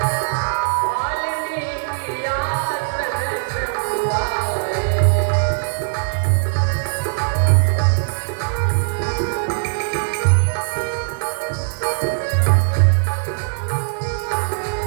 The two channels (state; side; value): silent; left; digital silence